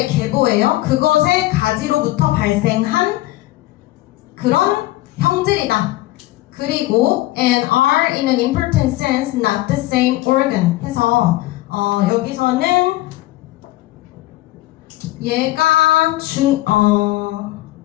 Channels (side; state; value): right; quieter; 17.1 dB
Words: 계보예요. 그것의 가지로부터 발생한 그런 형질이다. 그리고 and are in an important sense not the same organ. 해서 여기서는 얘가